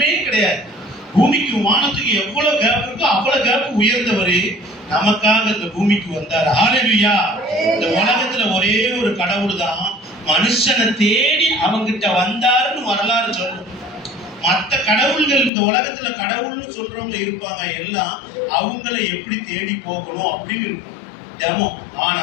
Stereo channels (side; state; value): right; drops out; at 15.5 s